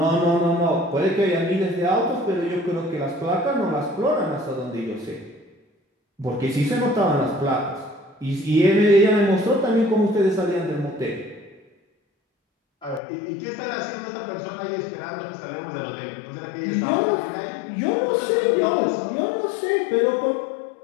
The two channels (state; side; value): drops out; right; at 13.0 s